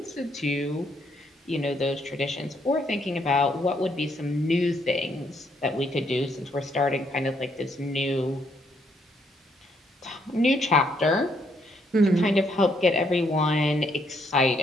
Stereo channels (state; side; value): normal; both; correlation 0.72